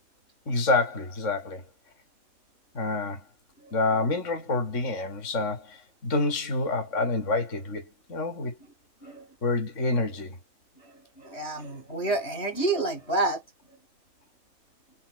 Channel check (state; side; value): late; right; 3.6 ms